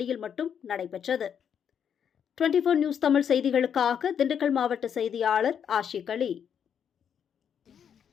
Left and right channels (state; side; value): quieter; right; 8.1 dB